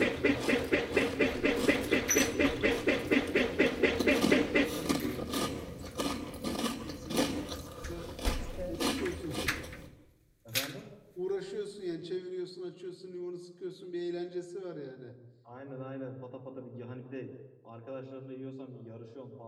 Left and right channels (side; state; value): both; identical; correlation 1.00